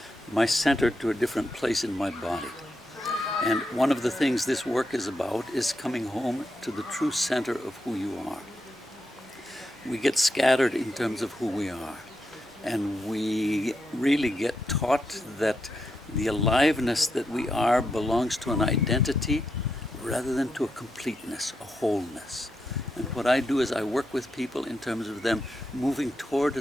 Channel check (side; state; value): both; normal; correlation 0.84